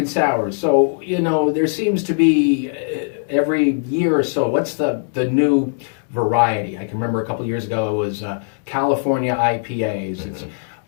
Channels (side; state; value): right; silent; 66 dB below the other